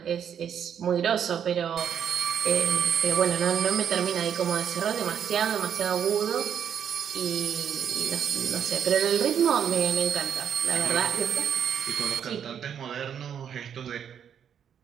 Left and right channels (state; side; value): quieter; left; 8.4 dB